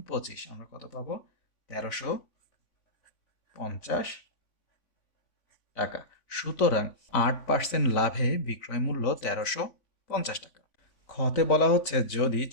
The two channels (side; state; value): right; late; 3.5 ms